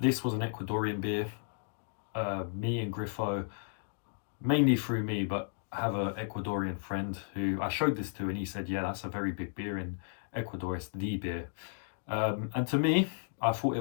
was an Ecuadorian beer. Me and Griffo, mainly through me, but I have an Ecuadorian friend who I showed this to, and he said, yeah, that's a very big beer in Ecuador, it's the beer. And to me, I thought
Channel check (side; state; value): right; silent; digital silence